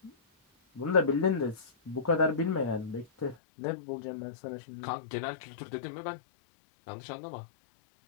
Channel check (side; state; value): right; drops out; at 3.4 s